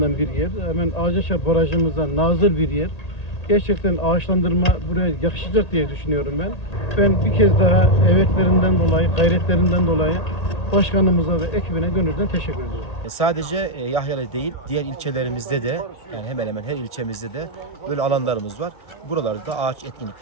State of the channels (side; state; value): right; late; 1.8 ms